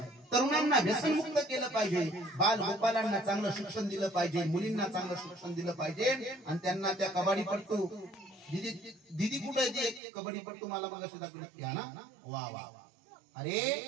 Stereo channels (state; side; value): drops out; left; at 10.0 s